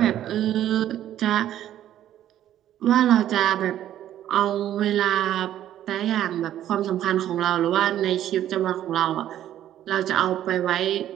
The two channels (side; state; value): left; quieter; 11.8 dB